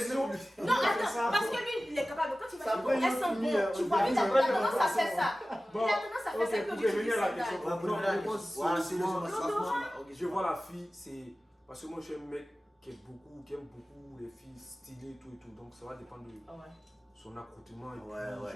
Non, attends, parce que lui, il est capable. Quand il va Ça chez vous, peut elles sont nous bonnes. Tu finir, vois, lui, il a on va tendance à faire ça. Bon, Il a tendance à faire ok, ça que pour tu dis revenir à la sandales. question. Ouais, pour Non, revenir à la je pense question. Voilà, c'est le souvent- Je vois la fille, c'est. Parce que moi, je suis un mec qui aime beaucoup les filles stylées, tout et tout. Donc, ça va dépendre de Ouais. son accoutrement. Et Ouais, puis, ouais,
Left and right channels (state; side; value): normal; both; correlation 0.96